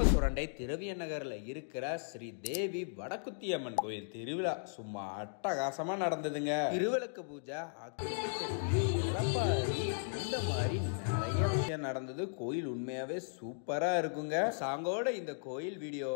சுரண்டை திரவிய நகர்ல இருக்கிற ஸ்ரீ தேவி வடக்குத்தியம்மன் கோயில் திருவிழா சும்மா அட்டகாசமா நடந்ததுங்க. திருவிளக்கு பூஜை, இந்த மாதிரி நிறைய விஷயம் நடந்தது. கோயில் உண்மையாவே சூப்பரா இருக்குங்க. சாங்கோட இந்த கோயில்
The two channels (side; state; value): right; silent; digital silence